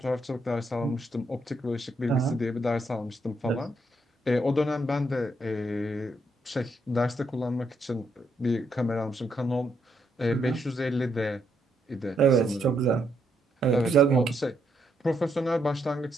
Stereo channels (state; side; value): normal; both; correlation 0.76